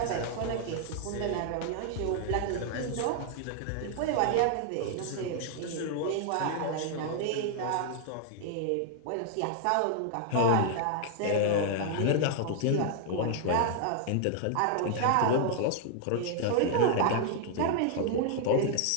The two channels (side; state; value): both; different; correlation -0.01